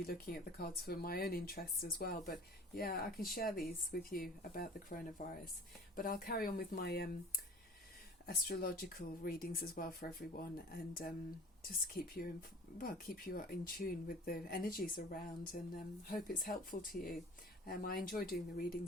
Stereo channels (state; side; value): normal; both; correlation 0.45